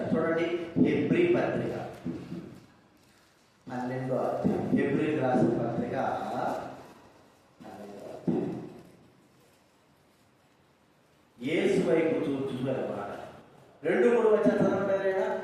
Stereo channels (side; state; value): both; identical; correlation 1.00